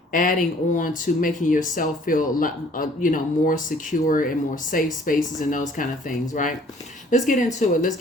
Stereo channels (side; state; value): both; normal; correlation 0.56